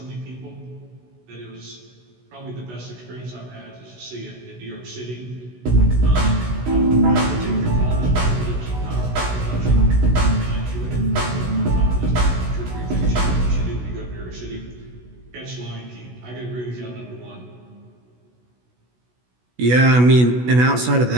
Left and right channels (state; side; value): late; left; 16 ms